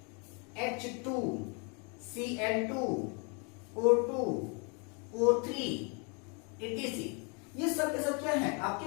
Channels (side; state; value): right; quieter; 34.8 dB